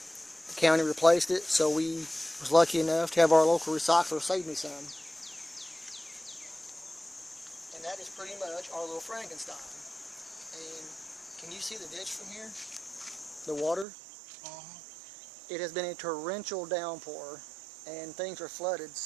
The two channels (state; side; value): drops out; left; at 13.9 s